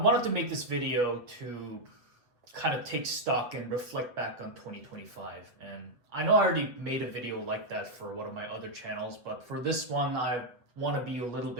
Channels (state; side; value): late; left; 8.0 ms